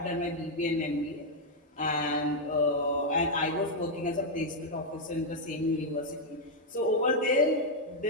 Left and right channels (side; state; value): both; normal; correlation -0.01